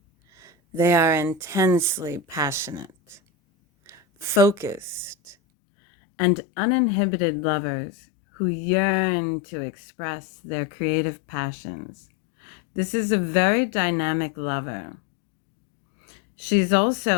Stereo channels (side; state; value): right; drops out; at 5.4 s